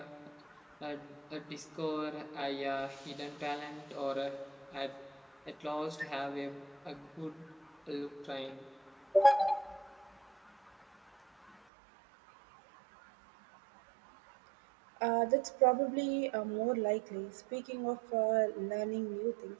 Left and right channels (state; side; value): drops out; left; at 11.6 s